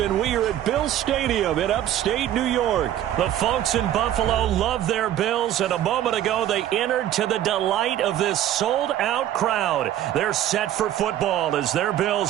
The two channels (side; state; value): left; quieter; 11.9 dB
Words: we are at Bill Stadium in upstate New York. The folks in Buffalo love their Bills, and a moment ago they entered to the delight of this sold-out crowd. They're set for football as their